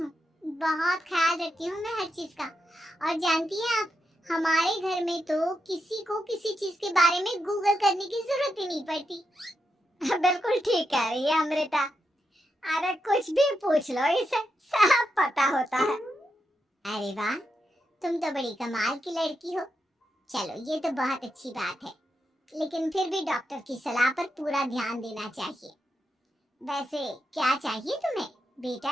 हूँ। बहुत ख्याल रखती हूँ मैं हर चीज का। और जानती हैं आप, हमारे घर में तो किसी को किसी चीज के बारे में गूगल करने की जरूरत ही नहीं पड़ती। बिल्कुल ठीक कह रही है अमृता, अरे कुछ भी पूछ लो, इसे सब पता होता है। अरे वाह, तुम तो बड़ी कमाल की लड़की हो। चलो, ये तो बहुत अच्छी बात है, लेकिन फिर भी डॉक्टर की सलाह पर पूरा ध्यान देना चाहिए। वैसे क्या चाहिए तुम्हें, बेटा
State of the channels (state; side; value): normal; both; correlation 0.85